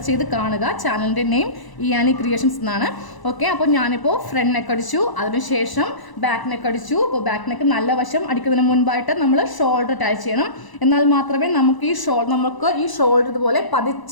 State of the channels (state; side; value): late; right; 1.0 ms